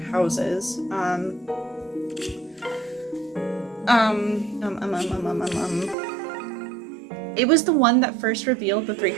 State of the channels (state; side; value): drops out; left; at 6.0 s